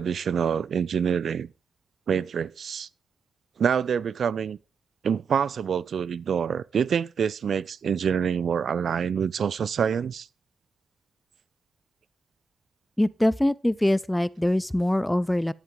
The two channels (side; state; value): left; quieter; 3.6 dB